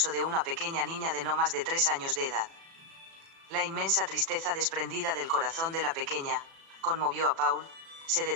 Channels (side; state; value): left; late; 36 ms